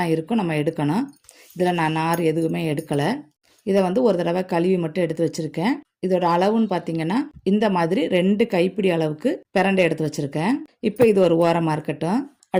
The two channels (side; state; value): both; identical; correlation 1.00